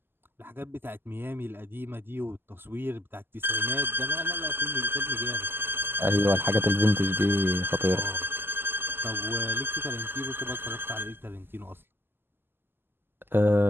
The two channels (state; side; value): late; left; 0.10 ms